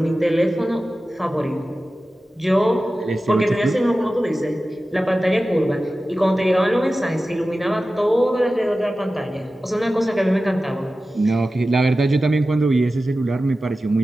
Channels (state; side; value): normal; both; correlation 0.95